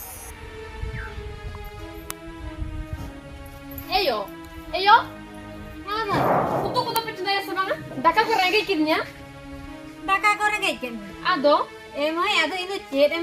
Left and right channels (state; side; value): identical; both; correlation 1.00